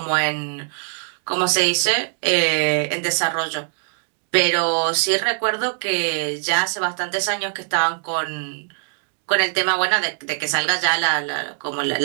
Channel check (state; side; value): silent; left; digital silence